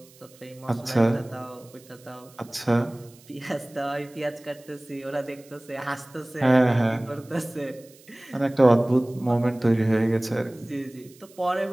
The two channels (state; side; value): noise; right; hiss, 25 dB below the sound